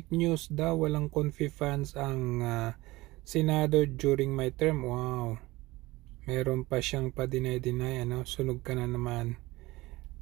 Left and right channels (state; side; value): quieter; left; 19.9 dB